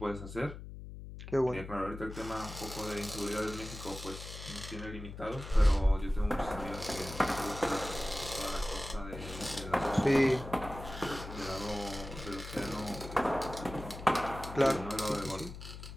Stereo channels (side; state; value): left; noise; hum, 11 dB below the sound